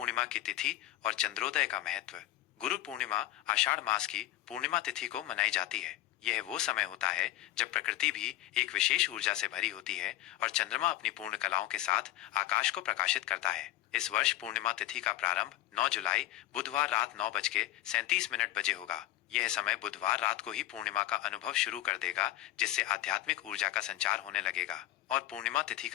की तिथि और चंद्रोदय का महत्व। गुरु पूर्णिमा आषाढ़ मास की पूर्णिमा तिथि को मनाई जाती है। यह वो समय होता है जब प्रकृति भी एक विशेष ऊर्जा से भरी होती है और चंद्रमा अपनी पूर्ण कलाओं के साथ आकाश को प्रकाशित करता है। इस वर्ष पूर्णिमा तिथि का प्रारंभ 9 जुलाई बुधवार रात 9:37 बजे होगा। यह समय बुधवार रात को ही पूर्णिमा का अनुभव शुरू कर देगा, जिससे आध्यात्मिक ऊर्जा का संचार होने लगेगा। और पूर्णिमा तिथि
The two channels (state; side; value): quieter; right; 15.1 dB